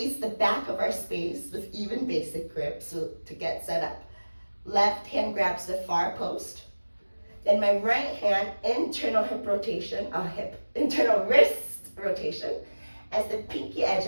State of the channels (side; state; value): both; inverted; correlation -1.00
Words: the back of our space with even basic grip so to get set up. Left hand grabs the far post. Then my right hand, internal internal wrist rotation, as the pinky edge